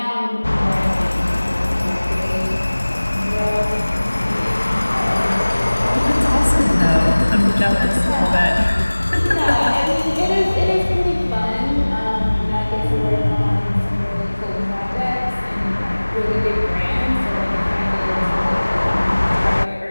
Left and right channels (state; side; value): inverted; both; correlation -1.00